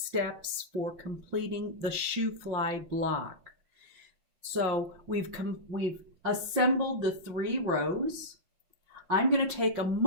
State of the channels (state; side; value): late; left; 5.7 ms